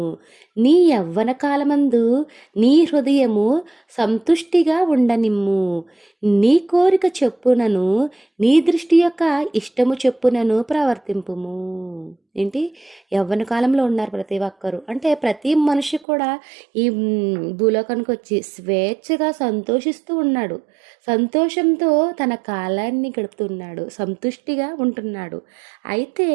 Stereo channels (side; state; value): left; drops out; at 16.1 s